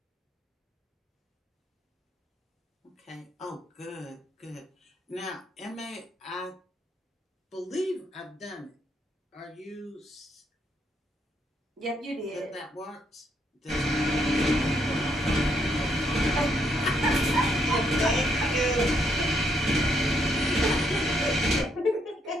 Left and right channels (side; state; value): both; normal; correlation 0.74